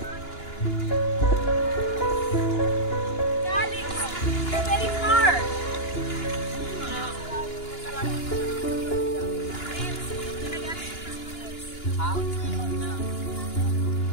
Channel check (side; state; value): right; late; 2.9 ms